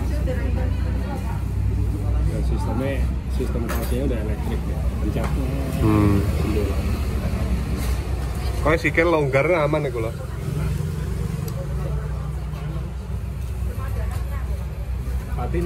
sistem kasihnya udah elektrik ya, pencatnya. Kok sikil longgar aman iku lho. Tapi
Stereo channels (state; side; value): identical; both; correlation 1.00